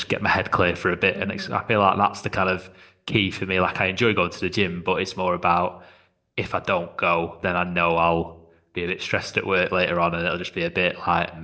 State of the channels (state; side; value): identical; both; correlation 1.00